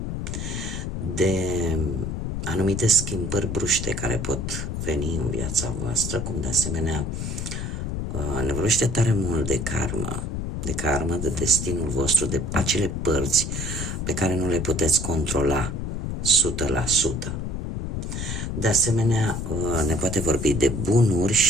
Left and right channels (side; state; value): left; noise; rumble, 3 dB below the sound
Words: de anumite schimbări bruște care pot veni în viața voastră, cum de asemenea ne vorbește tare mult de karmă, de destinul vostru, de acele părți pe care nu le puteți controla 100%. De asemenea, ne poate vorbi de